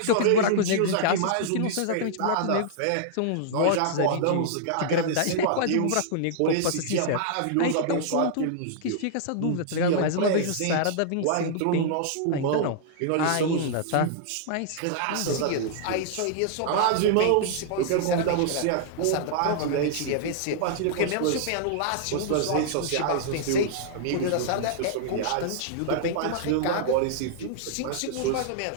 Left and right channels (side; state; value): both; different; correlation -0.01